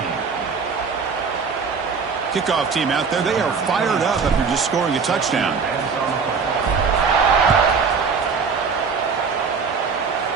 Kickoff team out there. They are fired up after just scoring a touchdown.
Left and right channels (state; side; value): quieter; left; 5.4 dB